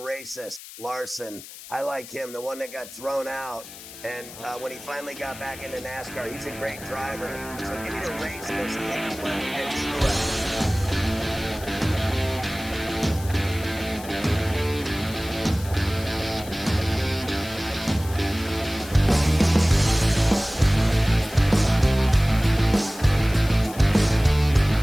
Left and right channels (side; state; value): left; noise; hiss, 15 dB below the sound